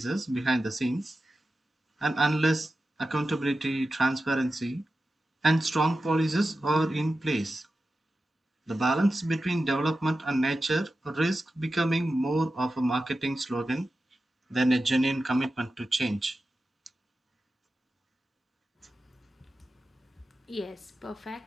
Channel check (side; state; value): both; normal; correlation 0.92